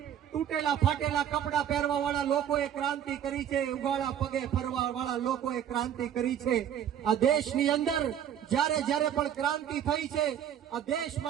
તૂટેલા ફાટેલા કપડા પહેરવા વાળા લોકોએ ક્રાંતિ કરી છે, ઉગાડા પગે ફરવા વાળા લોકોએ ક્રાંતિ કરી છે। આ દેશની અંદર જ્યારે પણ ક્રાંતિ થઈ છે, આ દેશ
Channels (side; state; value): left; quieter; 9.7 dB